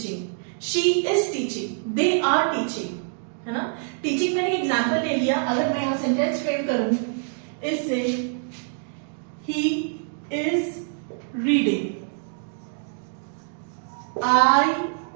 she is teaching, they are teaching, है ना। टीचिंग मैंने एग्जाम्पल ले लिया। अगर मैं यहां सेंटेंस फ्रेम करूं इससे, he is reading, I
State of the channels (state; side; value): silent; left; digital silence